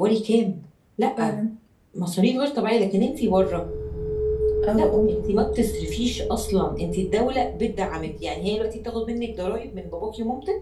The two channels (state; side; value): identical; both; correlation 1.00